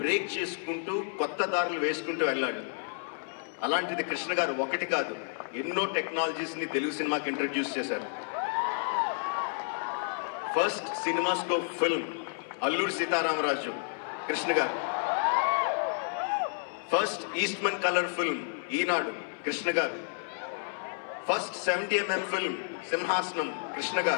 బ్రేక్ చేసుకుంటూ కొత్త దారులు వేసుకుంటూ వెళ్ళాడు. అలాంటిది కృష్ణ గారు ఒకటి కాదు, ఎన్నో టెక్నాలజీస్ని తెలుగు సినిమాకి ఇంట్రడ్యూస్ చేశారు. First CinemaScope film Alluri Sitaramaraju, Krishna గారు. ఫస్ట్ ఈస్ట్మన్ కలర్ ఫిల్మ్ ఈనాడు, కృష్ణ గారు. ఫస్ట్ 70mm ఫిల్మ్ సింహాసనం, కృష్ణ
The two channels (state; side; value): silent; right; 57 dB below the other